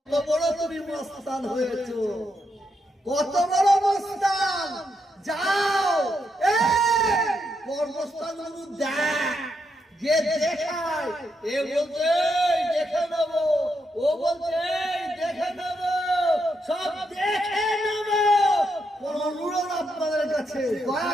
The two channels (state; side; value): normal; both; correlation 0.81